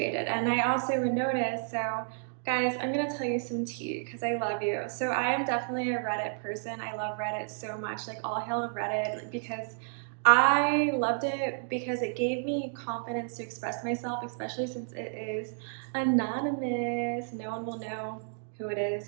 And I also would notice, so guys, I'm gonna tell you some tea because I love you. So I am definitely a Reddit person. I love Reddit so much, like all hail Reddit, because I loved it because it gave me confidence to express myself, especially since it is anonymous. No one will know who it is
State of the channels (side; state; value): left; silent; digital silence